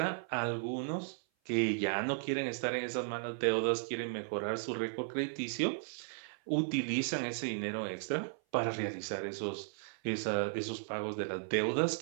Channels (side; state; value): left; silent; 54 dB below the other